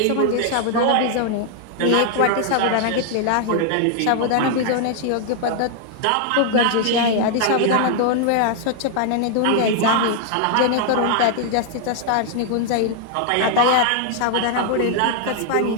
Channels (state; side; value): different; both; correlation 0.00